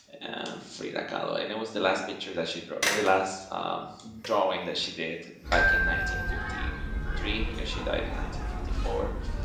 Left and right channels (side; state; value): both; identical; correlation 1.00